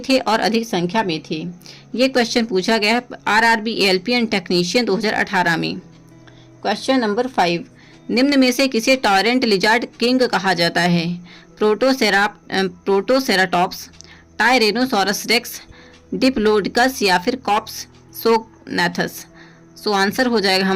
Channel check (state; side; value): identical; both; correlation 1.00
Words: और अधिक संख्या में थे। ये क्वेश्चन पूछा गया है आरआरबी एएलपी एंड टेक्नीशियन 2018 में। क्वेश्चन नंबर 5, निम्न में से किसे टॉरेंट लिजार्ड किंग कहा जाता है? प्रोटोसेराटॉप्स, टायरेनोसॉरस रेक्स, डिप्लोडकस या फिर कॉप्स सोगनाथस? सो आंसर हो जाएगा